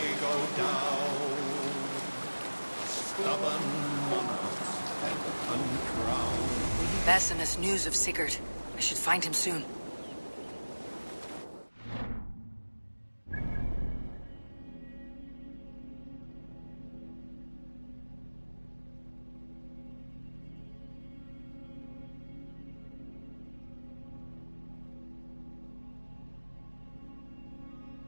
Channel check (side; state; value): both; inverted; correlation -1.00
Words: go down, stubborn monarchs and uncrowned. Bassimus news of Sigurd. I should find him soon.